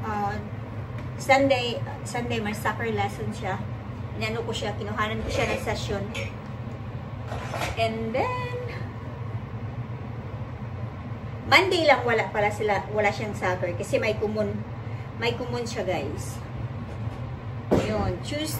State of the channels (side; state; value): both; identical; correlation 1.00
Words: Sunday may soccer lesson siya. Inano ko siya, kinuhanan ko siya ng session. And then, Monday lang wala siyang soccer kasi may kumon siya, guys. Yun,